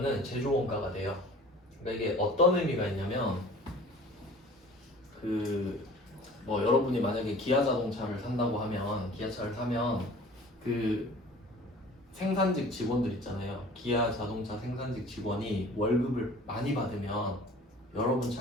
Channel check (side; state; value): both; normal; correlation 0.46